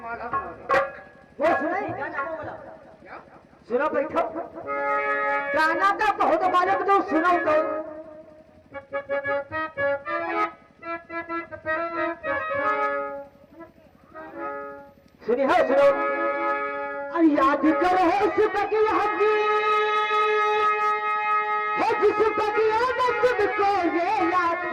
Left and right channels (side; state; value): both; identical; correlation 1.00